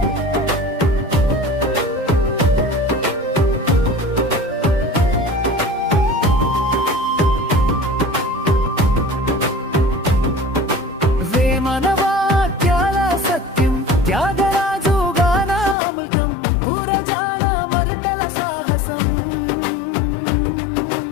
మనవాక్యాల సత్యం, త్యాగరాజు గానామృతం, పురజాన మరుతల సాహసం,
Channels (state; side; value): drops out; right; at 15.8 s